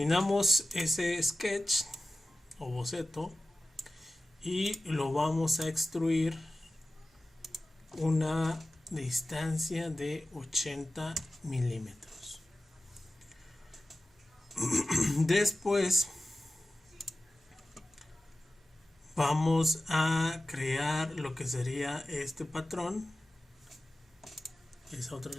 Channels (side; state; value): both; normal; correlation 0.95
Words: ese sketch o boceto y lo vamos a extruir una distancia de 80 milímetros. Después vamos a crear lo que sería este patrón, esa otra